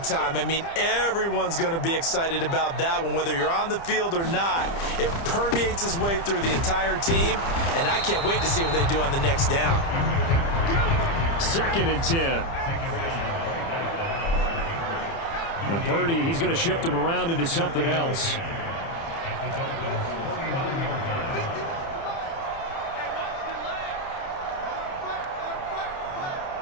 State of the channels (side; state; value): right; late; 30 ms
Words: time. I mean, everyone's going to be excited about that one, whether you're on the field or not. It permeates its way through the entire team, and I can't wait to see what they do on the next down. 2nd and 10. And Purdy, he's going to shift him around into something else.